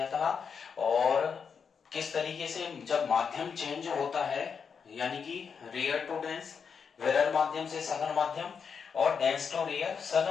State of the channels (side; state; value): right; quieter; 6.3 dB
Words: था, और किस तरीके से जब माध्यम चेंज होता है, यानी कि रेयर टू डेंस, विरल माध्यम से सघन माध्यम, और डेंस टू रेयर,